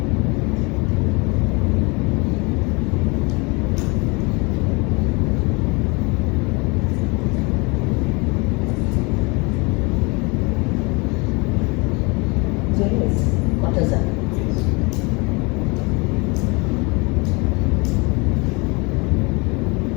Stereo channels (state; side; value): quieter; right; 28.1 dB